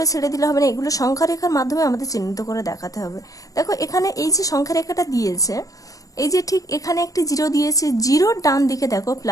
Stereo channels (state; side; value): late; right; 0.17 ms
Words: ছেড়ে দিলে হবে না, এগুলো সংখ্যা রেখার মাধ্যমে আমাদের চিহ্নিত করে দেখাতে হবে। দেখো এখানে এই যে সংখ্যা রেখাটা দিয়েছে, এই যে ঠিক এখানে একটি জিরো দিয়েছে, জিরোর ডান দিকে দেখো